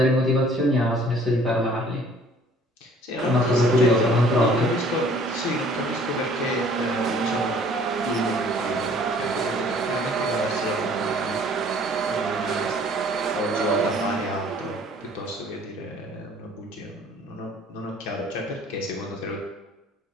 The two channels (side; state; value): both; normal; correlation 0.55